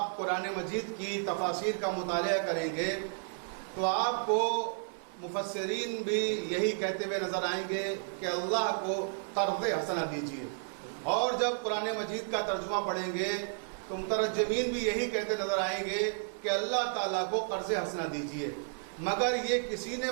قرآن مجید کی تفاسیر کا مطالعہ کریں گے تو آپ کو مفسرین بھی یہی کہتے ہوئے نظر آئیں گے کہ اللہ کو قرض حسنہ دیجیے، اور جب قرآن مجید کا ترجمہ پڑھیں گے تو مترجمین بھی یہی کہتے نظر آئیں گے کہ اللہ تعالیٰ کو قرض حسنہ دیجیے، مگر یہ کسی نے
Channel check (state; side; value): silent; left; 56 dB below the other